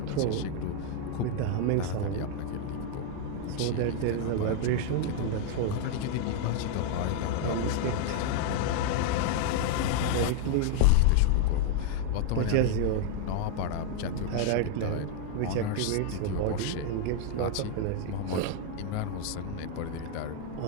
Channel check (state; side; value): different; both; correlation 0.00